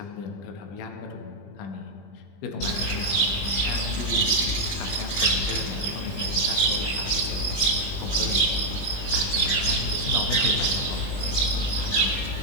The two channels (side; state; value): right; late; 20 ms